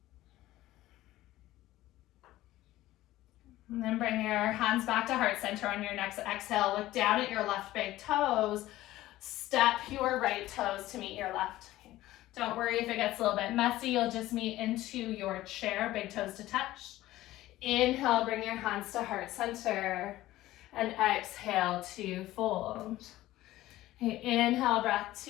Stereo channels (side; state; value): right; quieter; 15.9 dB